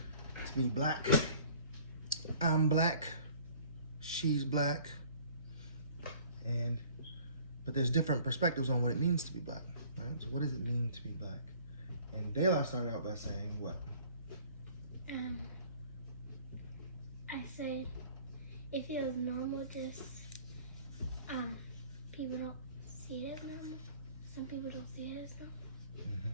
be black. I'm black, she's black, but there's different perspectives on what it means to be black, right? So what does it mean to be black? And Dela started out by saying what? I said it feels normal, just people don't see it as normal. Some people don't see it as normal.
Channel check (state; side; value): inverted; both; correlation -0.52